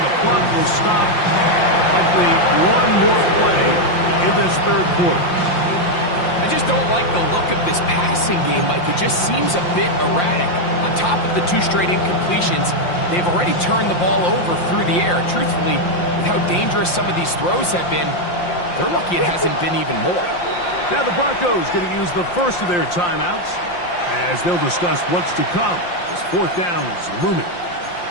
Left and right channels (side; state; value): right; late; 5.7 ms